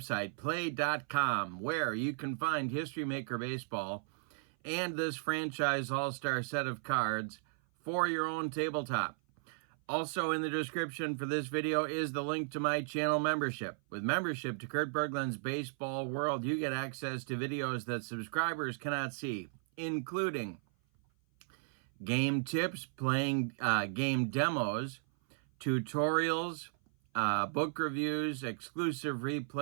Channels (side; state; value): left; silent; 54 dB below the other